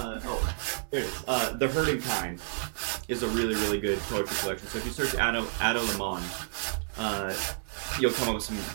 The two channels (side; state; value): left; silent; digital silence